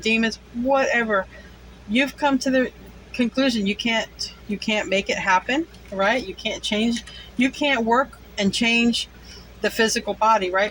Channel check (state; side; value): identical; both; correlation 1.00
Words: Whatever. You've come to the conclusion you can't make it happen, right? You can't change. You can't work and change the physical body,